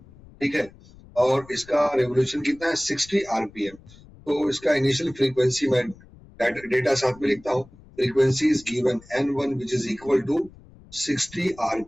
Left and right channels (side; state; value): left; noise; rumble, 23 dB below the sound